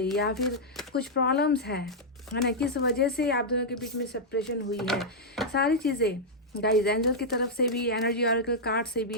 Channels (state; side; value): normal; both; correlation -0.06